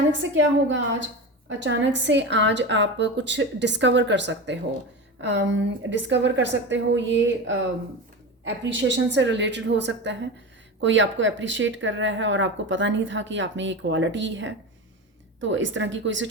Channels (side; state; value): both; normal; correlation 0.25